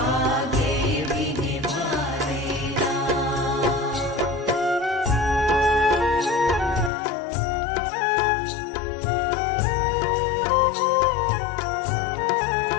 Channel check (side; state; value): right; drops out; at 6.9 s